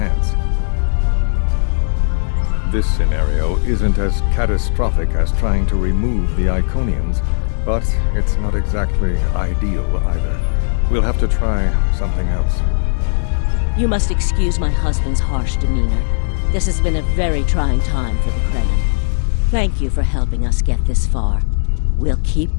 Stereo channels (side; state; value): right; silent; digital silence